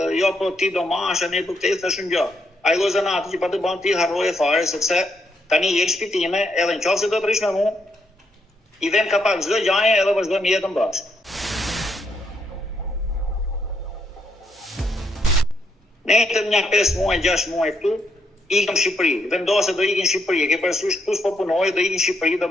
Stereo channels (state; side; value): normal; both; correlation 0.76